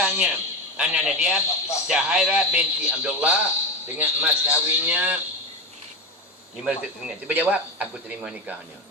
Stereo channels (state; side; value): normal; both; correlation 0.18